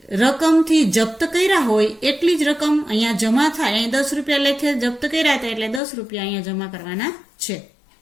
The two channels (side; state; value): right; drops out; at 5.8 s